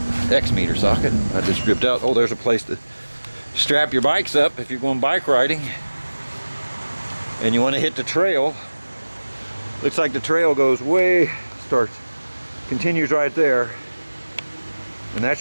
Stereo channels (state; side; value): inverted; both; correlation -1.00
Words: X meter socket. I just stripped out. Oh, there's a place to strap your bikes up if you're going bike riding and you want to hit the trail. Looks like the trail goes way, continues right there. And that